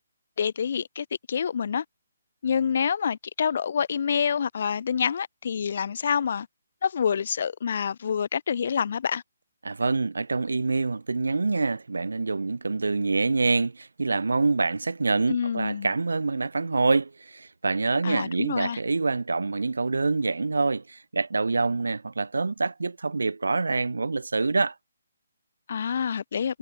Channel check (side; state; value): both; inverted; correlation -0.87